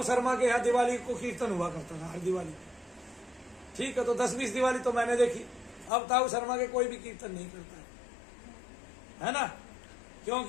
शर्मा के यहाँ दिवाली को कीर्तन हुआ करता था, हर दिवाली, ठीक है। तो 10-20 दिवाली तो मैंने देखी। अब ताऊ शर्मा के कोई भी कीर्तन नहीं करता है ना,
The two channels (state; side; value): drops out; right; at 5.9 s